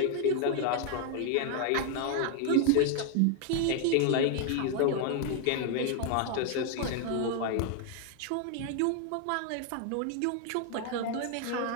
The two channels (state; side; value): different; both; correlation 0.00